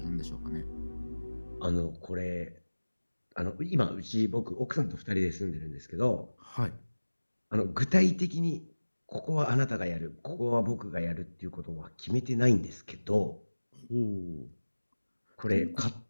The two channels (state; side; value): inverted; both; correlation -1.00